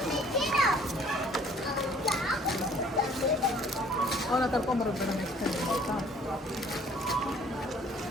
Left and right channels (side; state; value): both; normal; correlation 0.56